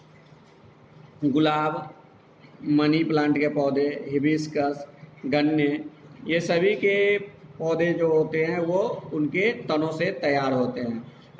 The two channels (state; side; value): identical; both; correlation 1.00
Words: गुलाब, money plant के पौधे, hibiscus, गन्ने, ये सभी के पौधे जो होते हैं वो उनके तनों से तैयार होते हैं।